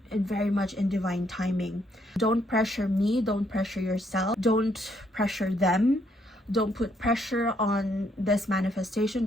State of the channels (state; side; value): normal; both; correlation 0.72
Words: very much in divine timing. Don't pressure me, don't pressure yourself, don't pressure them. Don't put pressure on this manifestation,